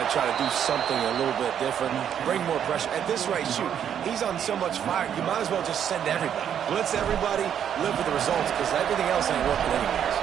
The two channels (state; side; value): quieter; left; 9.0 dB